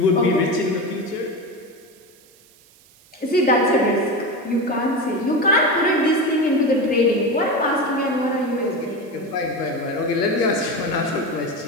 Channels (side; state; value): right; noise; hiss, 28 dB below the sound